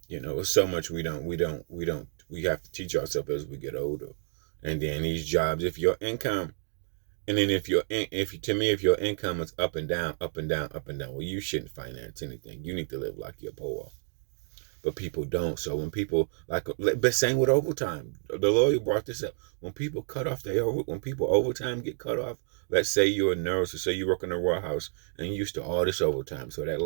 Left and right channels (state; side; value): silent; left; 58 dB below the other